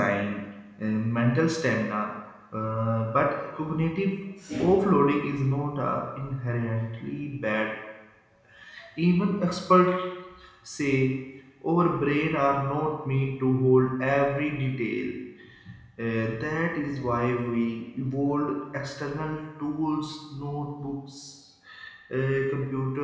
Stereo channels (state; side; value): identical; both; correlation 1.00